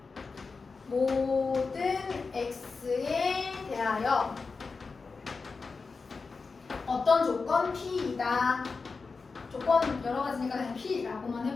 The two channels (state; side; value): quieter; right; 4.5 dB